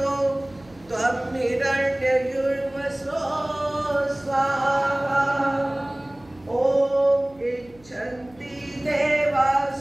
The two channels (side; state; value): right; noise; hum, 27 dB below the sound